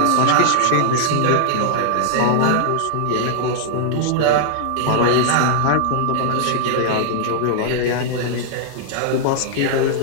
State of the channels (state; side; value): different; both; correlation -0.01